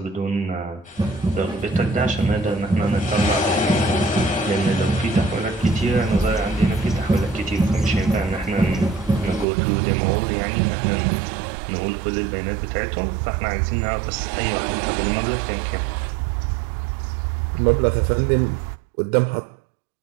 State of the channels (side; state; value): left; drops out; at 9.5 s